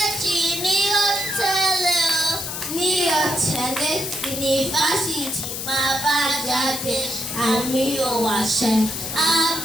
ní ó tẹ̀lé o. Ní ó tẹ̀lé yunifásitì máa bá jáde àmì ò wàṣẹ. A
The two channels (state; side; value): noise; left; hiss, 5 dB below the sound